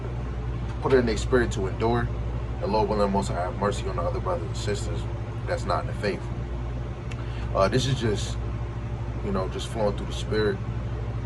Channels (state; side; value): identical; both; correlation 1.00